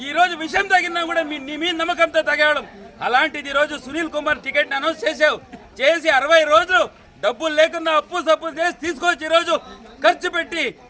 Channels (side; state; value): both; identical; correlation 1.00